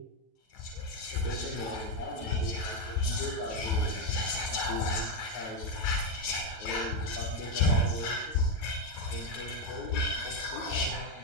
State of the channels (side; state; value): right; late; 9.3 ms